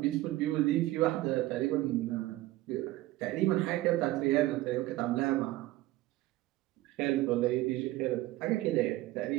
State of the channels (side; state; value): left; quieter; 17.3 dB